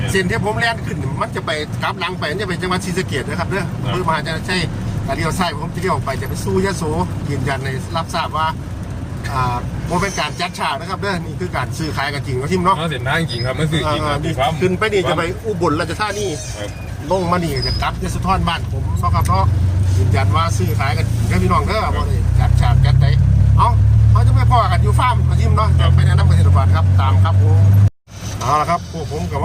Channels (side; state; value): both; identical; correlation 1.00